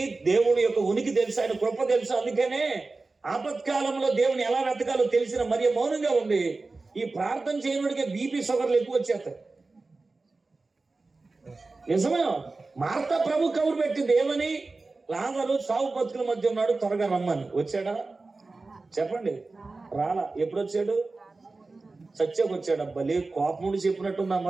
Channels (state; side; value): quieter; left; 3.6 dB